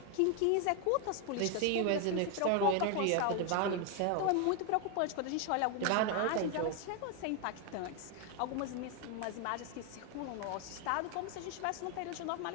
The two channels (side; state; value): both; different; correlation 0.01